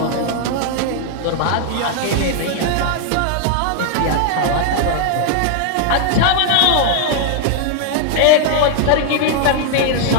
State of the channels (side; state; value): both; different; correlation 0.00